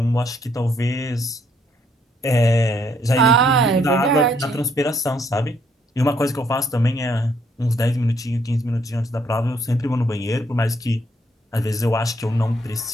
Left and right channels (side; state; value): both; normal; correlation 0.69